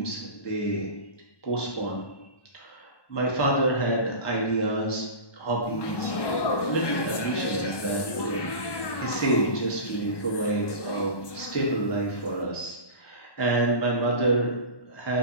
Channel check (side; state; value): right; late; 1.1 ms